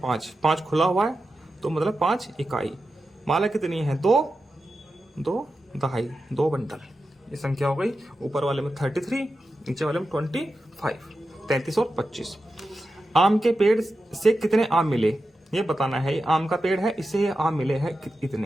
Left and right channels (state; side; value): normal; both; correlation 0.91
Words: 5, 5 खुला हुआ है, तो मतलब 5 इकाई। माला कितनी है 2 2 दहाई, 2 बंडल, ये संख्या हो गई। ऊपर वाले में 33, नीचे वाले में 25, 33 और 25। आम के पेड़ से कितने आम मिले, ये बताना है। ये आम का पेड़ है, इससे ये आम मिले हैं